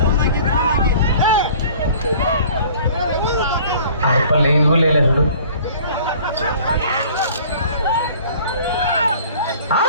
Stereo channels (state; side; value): inverted; both; correlation -0.50